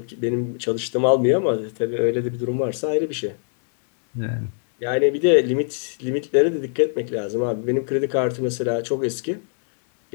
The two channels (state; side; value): silent; right; digital silence